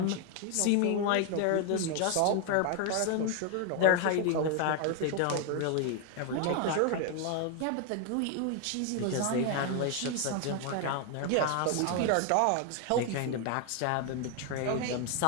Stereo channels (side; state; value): both; different; correlation 0.00